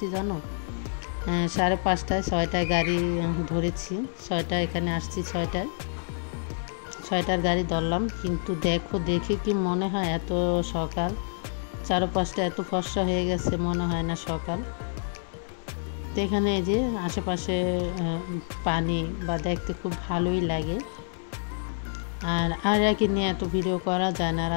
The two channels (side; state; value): right; silent; 60 dB below the other